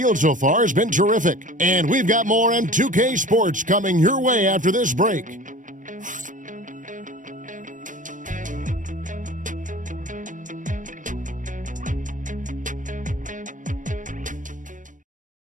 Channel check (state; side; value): late; left; 0.37 ms